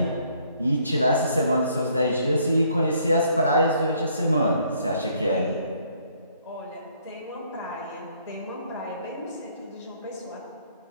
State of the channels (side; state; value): both; inverted; correlation -0.65